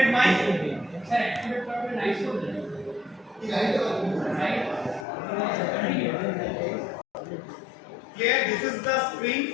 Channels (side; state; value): right; drops out; at 5.1 s